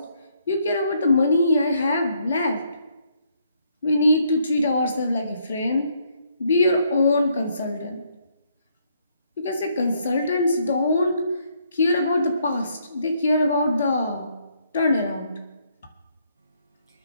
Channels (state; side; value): inverted; both; correlation -0.71